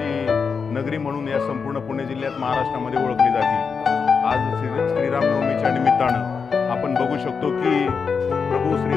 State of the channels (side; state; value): right; quieter; 5.6 dB